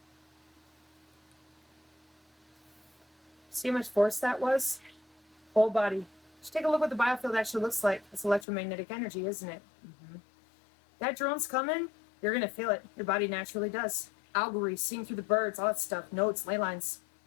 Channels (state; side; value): drops out; right; at 8.5 s